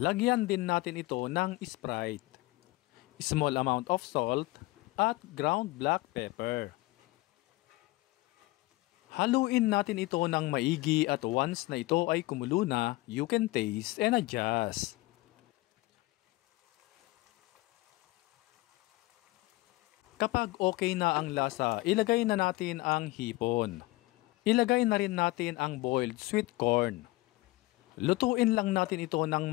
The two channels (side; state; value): right; quieter; 20.8 dB